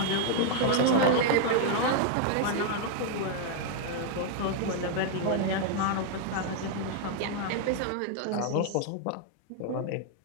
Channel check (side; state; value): both; different; correlation 0.00